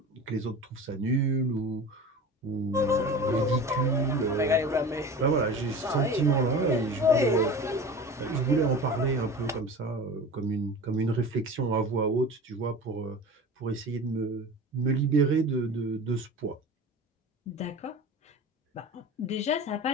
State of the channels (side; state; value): both; normal; correlation 0.35